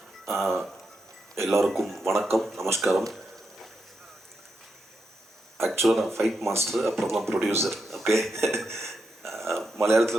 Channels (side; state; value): both; normal; correlation 0.84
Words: எல்லாருக்கும் வணக்கம், நமஸ்காரம். ஆக்சுவலாக நான் fight master, அப்புறம் தான் producer. Okay,